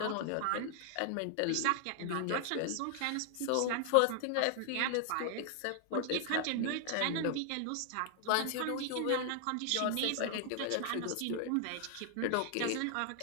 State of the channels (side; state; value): both; different; correlation 0.00